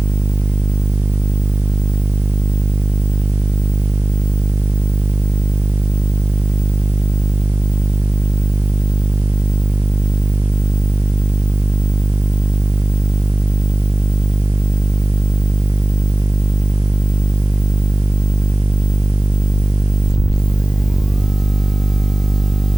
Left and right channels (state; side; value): normal; both; correlation 0.98